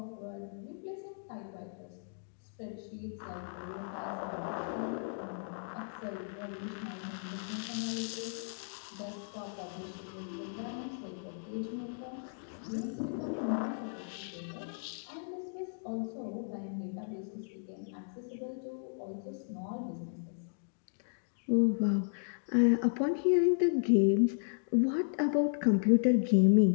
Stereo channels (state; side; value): silent; right; digital silence